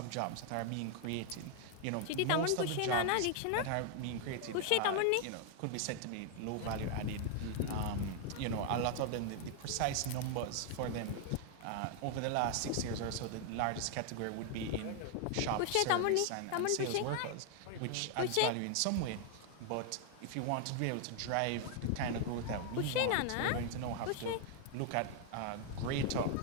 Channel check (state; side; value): different; both; correlation 0.00